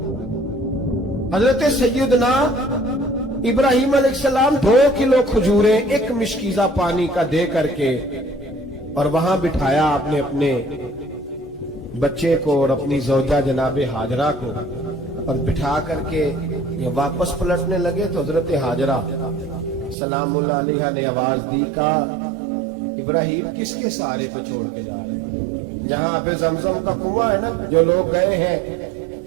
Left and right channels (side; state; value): left; drops out; at 20.0 s